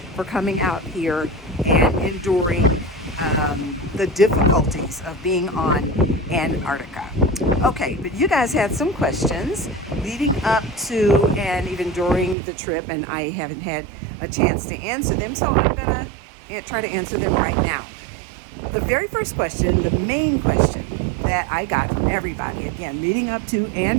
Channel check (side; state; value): left; drops out; at 12.4 s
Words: for coming out here and enduring the difficulties of being on Antarctica. Okay, but you guys had some questions leading up to and even during the trip, and I haven't had a chance to answer them, so I'm gonna try to answer them right now. The very first question, the main question that I got from everybody, again, leading up to